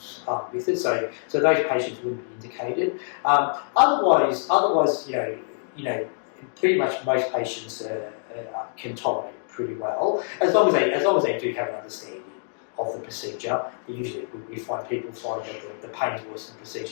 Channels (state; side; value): silent; right; digital silence